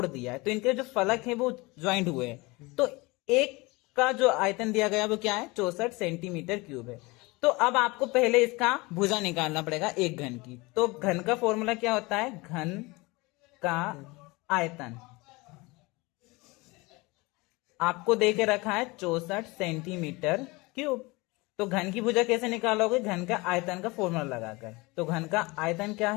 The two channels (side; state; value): right; quieter; 24.1 dB